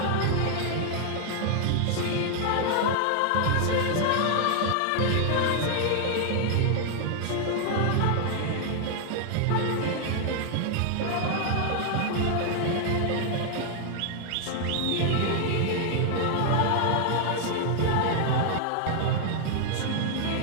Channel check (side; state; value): both; different; correlation 0.00